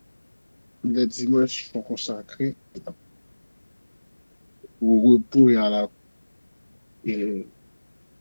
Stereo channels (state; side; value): inverted; both; correlation -1.00